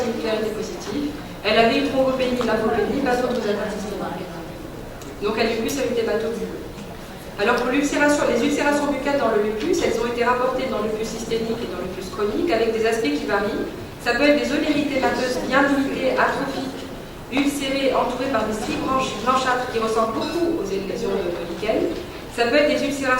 étaient positifs. Elle avait une thrombopénie, lymphopénie, pas d'autres atteintes systémiques. Donc un lupus avec des bateaux bulleux. Alors pour les ulcérations buccales dans le lupus, elles ont été rapportées dans le lupus systémique et dans le lupus chronique avec des aspects qui varient. Ça peut être des zones érythémateuses bien limitées, atrophiques, ulcérées, entourées par des stries blanchâtres qui ressemblent beaucoup aux lésions de lichen. Ça peut être des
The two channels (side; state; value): both; identical; correlation 1.00